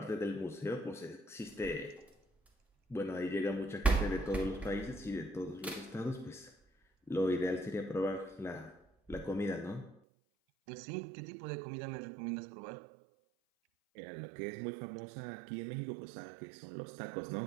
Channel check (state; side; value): drops out; left; at 10.0 s